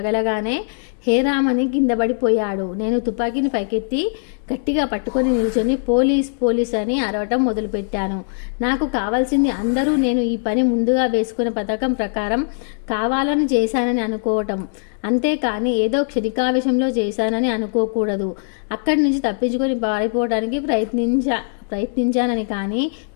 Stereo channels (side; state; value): right; silent; digital silence